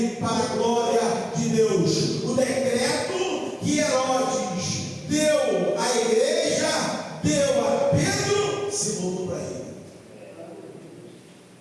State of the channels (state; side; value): identical; both; correlation 1.00